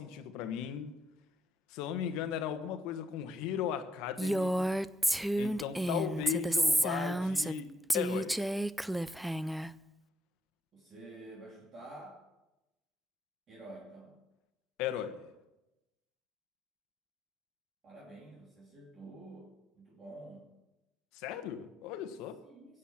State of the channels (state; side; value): normal; both; correlation 0.75